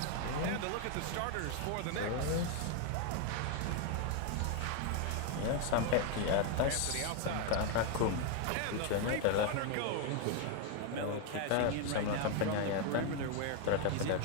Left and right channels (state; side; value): different; both; correlation 0.01